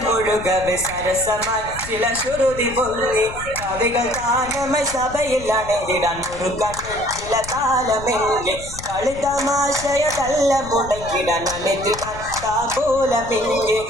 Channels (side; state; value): left; noise; rumble, 13 dB below the sound